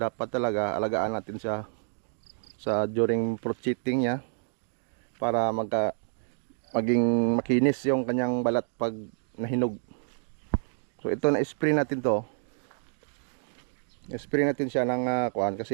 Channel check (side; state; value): left; silent; digital silence